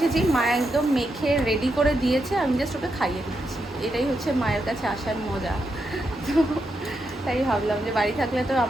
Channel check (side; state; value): both; normal; correlation 0.84